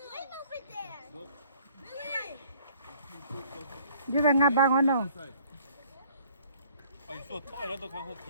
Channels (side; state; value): both; inverted; correlation -0.58